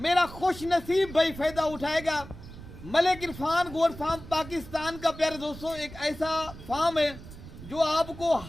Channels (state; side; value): noise; right; rumble, 15 dB below the sound